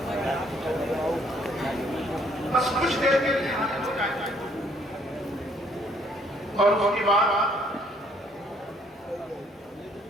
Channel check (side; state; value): both; normal; correlation 0.65